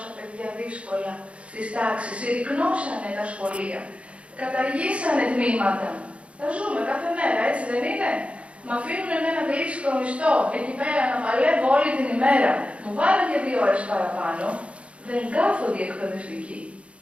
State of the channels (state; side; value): late; left; 0.061 ms